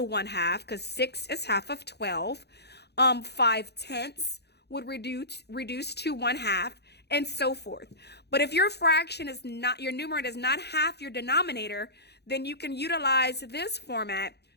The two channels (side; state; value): right; late; 0.48 ms